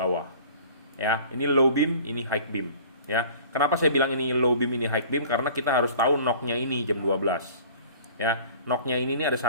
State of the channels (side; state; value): both; inverted; correlation -0.46